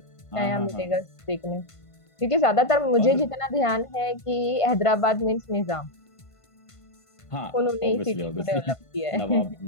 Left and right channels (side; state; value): right; late; 1.5 ms